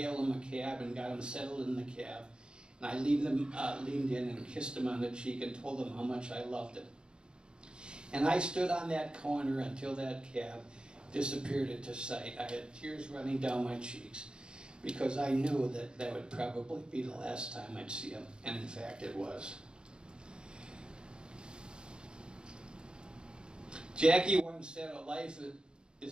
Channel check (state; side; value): late; left; 0.050 ms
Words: him a cab and got him settled in the cab. And I leaned in and kissed him on the cheek and told him how much I loved him. And I stood on that corner until that cab disappeared into sight. I had tears running down my cheeks because I knew that that would probably be the last time I'd see him. And in fact, it was. Jackie once said, a life